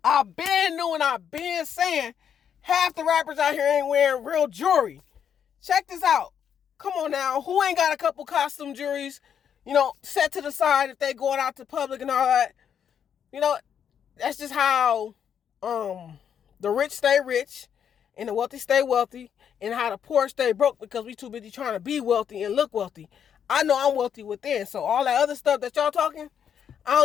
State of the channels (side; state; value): right; quieter; 8.3 dB